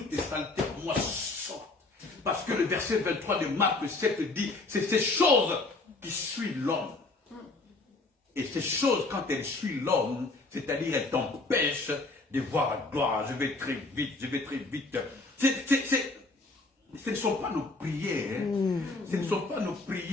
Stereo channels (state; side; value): quieter; right; 3.3 dB